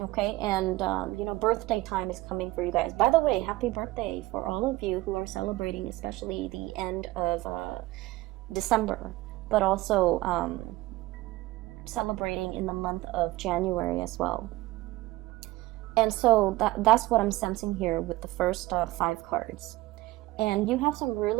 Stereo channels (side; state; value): left; quieter; 18.5 dB